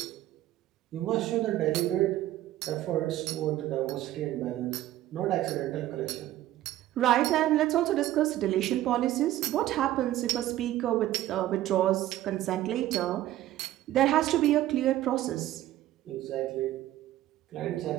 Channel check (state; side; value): quieter; left; 14.3 dB